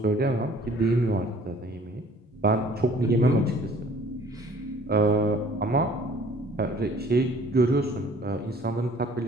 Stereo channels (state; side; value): normal; both; correlation 0.54